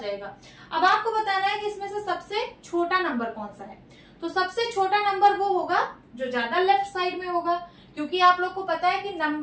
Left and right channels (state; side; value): identical; both; correlation 1.00